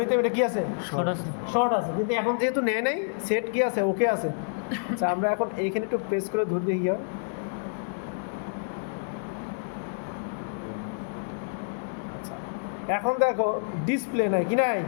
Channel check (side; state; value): right; silent; digital silence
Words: নিতাম এটা কী আছে, শর্ট আছে। কিন্তু এখন যেহেতু নেয় নাই, সেট কী আছে, ওকে আছে। আচ্ছা আমরা এখন এইখানে একটু প্রেস করে ধরে দেখি গিয়ে, এখন দেখো ডিসপ্লে নাই, কি নাই?